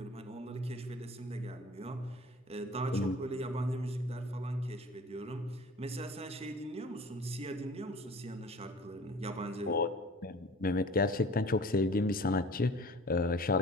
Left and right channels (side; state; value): both; normal; correlation 0.45